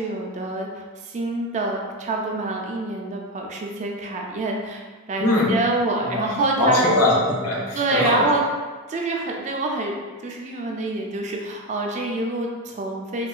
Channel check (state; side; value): normal; both; correlation 0.12